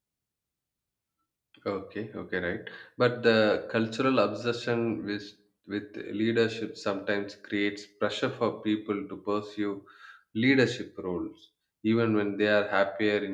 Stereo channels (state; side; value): identical; both; correlation 1.00